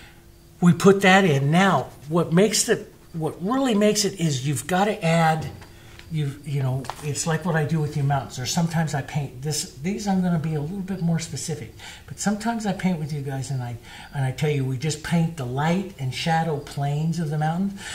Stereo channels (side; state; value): both; identical; correlation 1.00